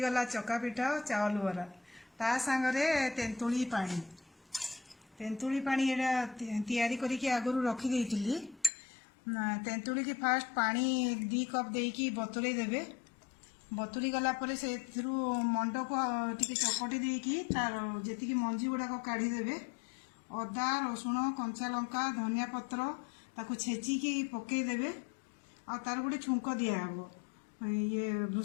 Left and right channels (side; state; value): right; drops out; at 8.7 s